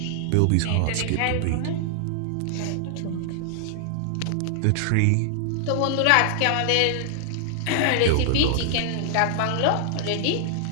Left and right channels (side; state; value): both; different; correlation 0.00